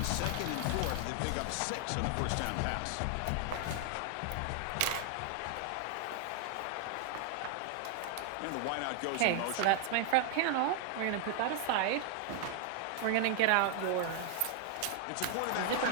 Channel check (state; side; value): different; both; correlation 0.00